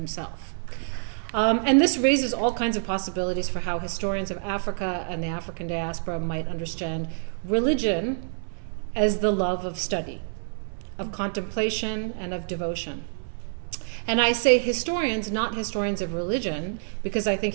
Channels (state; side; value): silent; left; 60 dB below the other